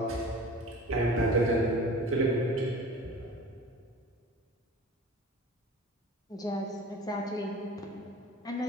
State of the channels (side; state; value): both; normal; correlation 0.40